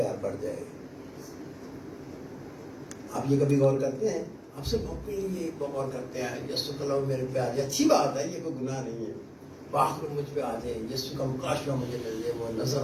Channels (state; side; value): identical; both; correlation 1.00